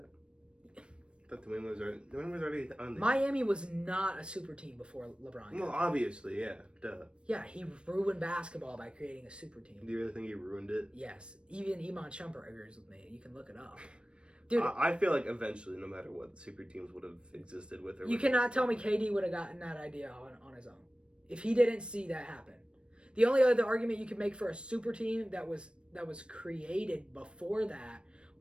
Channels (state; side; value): late; left; 0.057 ms